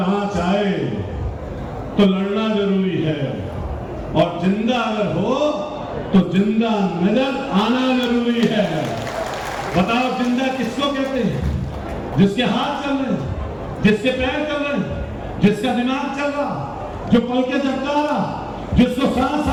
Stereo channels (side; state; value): both; identical; correlation 1.00